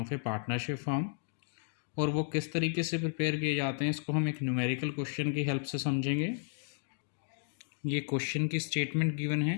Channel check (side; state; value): right; silent; 56 dB below the other